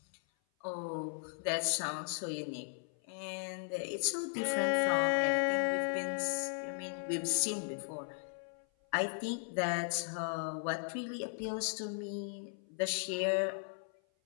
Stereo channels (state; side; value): silent; right; 53 dB below the other